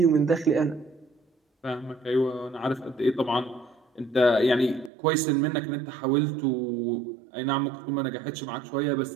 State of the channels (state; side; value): drops out; left; at 4.9 s